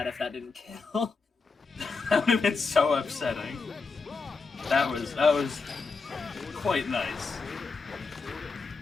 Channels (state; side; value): quieter; right; 4.5 dB